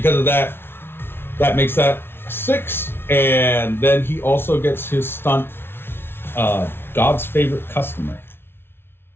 of that, that makes that 6. And then he also gets his stunt, God's favorite customer.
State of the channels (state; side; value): late; right; 0.11 ms